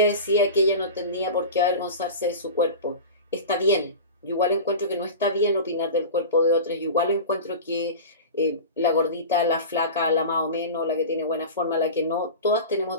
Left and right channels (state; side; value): inverted; both; correlation -0.31